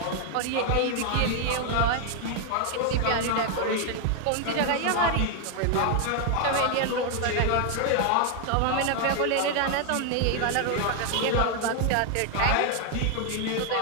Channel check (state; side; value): different; both; correlation 0.00